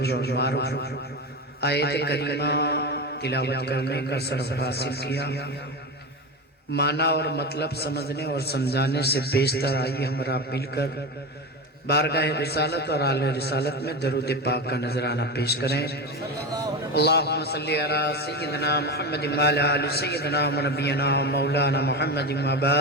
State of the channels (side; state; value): both; normal; correlation 0.21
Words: اور معروف آیت کریمہ تلاوت کرنے کا شرف حاصل کیا۔ معنی اور مطلب سمجھنے اور سمجھانے سے بیشتر آئیے ہمارا مل کر بارگاہ رسالت اور اعلی رسالت میں درود پاک کا نذرانہ پیش کریں۔ اللہم صلی علی سیدنا محمد وعلی آل سیدنا ونبینا مولانا محمد